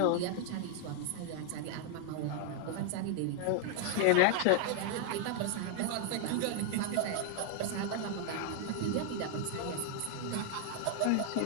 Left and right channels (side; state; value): both; different; correlation 0.00